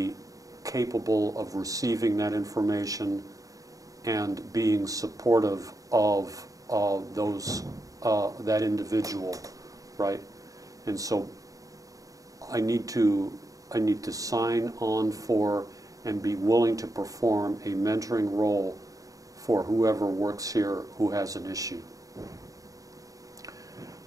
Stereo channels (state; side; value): late; left; 0.17 ms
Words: capable of receiving that information and being supportive of that individual, right? And so I need to sign on for and be willing to perform a mentoring role for whoever works here who has an issue.